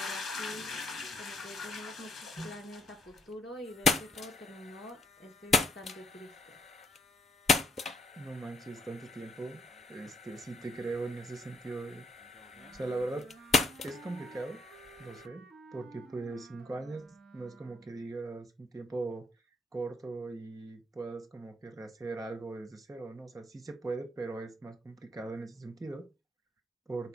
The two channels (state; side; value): normal; both; correlation 0.71